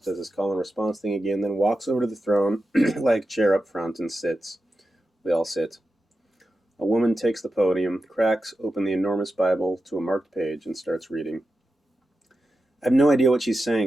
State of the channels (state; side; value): normal; both; correlation 0.90